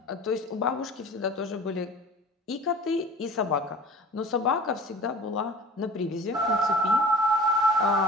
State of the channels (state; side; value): normal; both; correlation 0.41